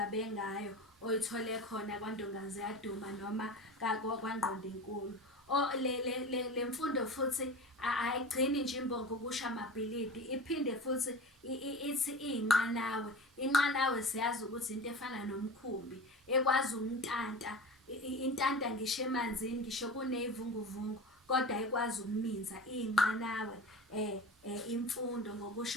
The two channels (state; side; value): normal; both; correlation 0.32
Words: ngayo oyithole khona kwaNdongazi yaDuma noma kwaNgqondonkulu. Le mfundo futhi ayigcini nje imbongi ukusho amabhilidi, iphinde futhi ithi iy'nqanawe. Inqanawe siyazi ukuthi into efana nomkhumbi ekwazi umntanta. Intanta ngisho emanzini, ngisho kuney'vunguvungu kodwa ikwazi ukuminza iy'nqanawe. Imfundo